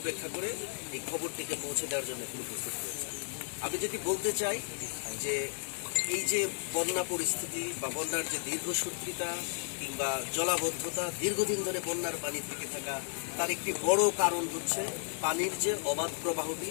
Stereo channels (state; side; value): silent; right; digital silence